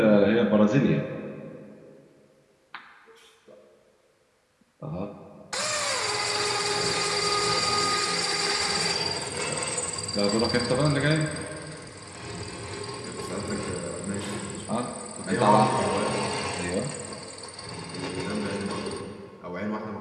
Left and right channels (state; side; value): identical; both; correlation 1.00